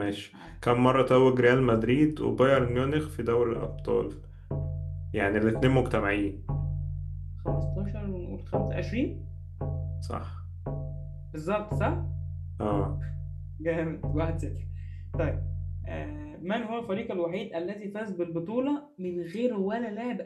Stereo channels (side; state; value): both; identical; correlation 1.00